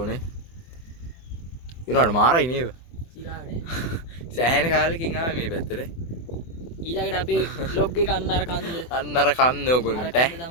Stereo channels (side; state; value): right; late; 24 ms